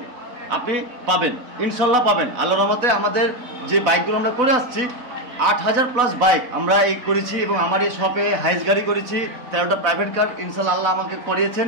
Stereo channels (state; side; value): late; left; 4.0 ms